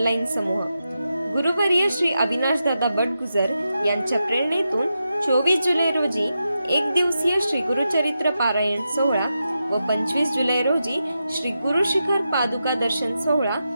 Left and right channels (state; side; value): inverted; both; correlation -0.88